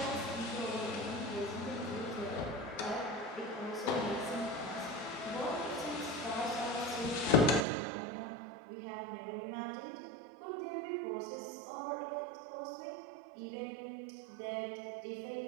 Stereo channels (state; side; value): drops out; left; at 7.7 s